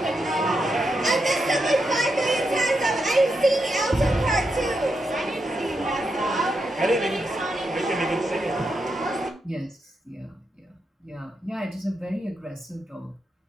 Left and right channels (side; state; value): both; normal; correlation 0.84